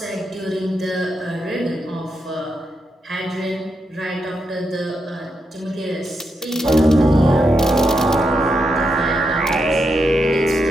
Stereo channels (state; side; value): normal; both; correlation 0.83